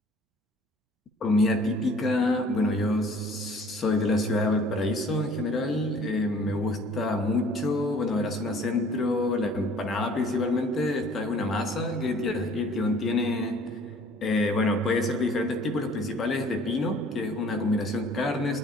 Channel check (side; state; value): both; normal; correlation 0.53